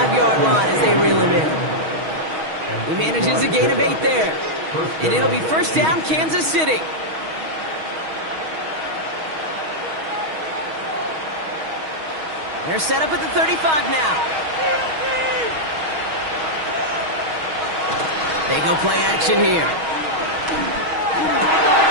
line as they reel him in. He manages a gain of 8 there. And it'll be first down, Kansas City. They're set up at the 35 now. They go play action here.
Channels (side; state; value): left; late; 6.3 ms